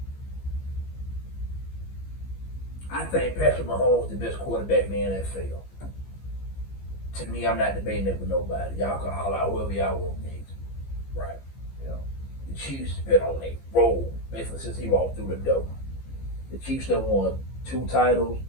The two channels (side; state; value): right; late; 15 ms